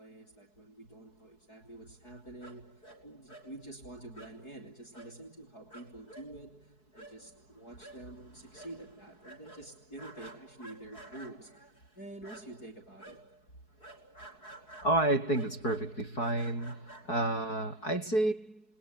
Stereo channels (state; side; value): late; right; 4.7 ms